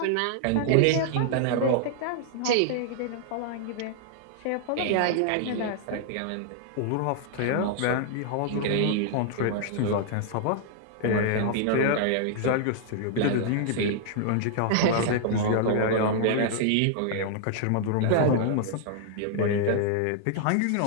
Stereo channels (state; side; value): different; both; correlation -0.01